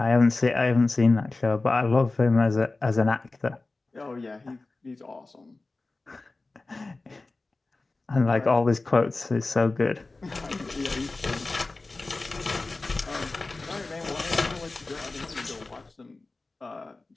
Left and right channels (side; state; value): right; quieter; 3.4 dB